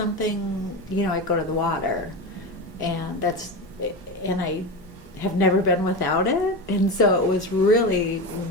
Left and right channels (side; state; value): both; normal; correlation 0.21